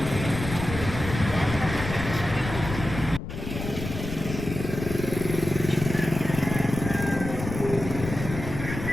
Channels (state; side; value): noise; left; rumble, 7 dB below the sound